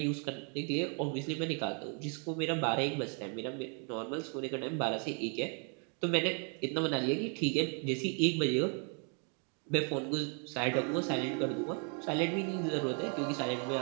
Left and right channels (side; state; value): left; quieter; 39.5 dB